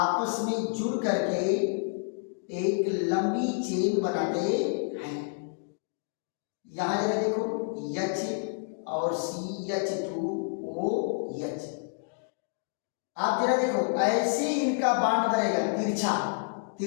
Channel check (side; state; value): right; silent; digital silence